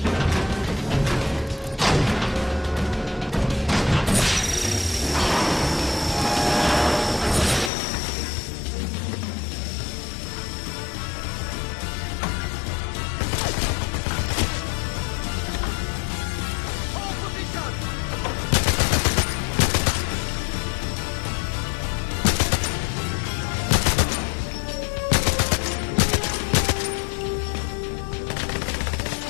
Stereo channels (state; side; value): drops out; right; at 7.7 s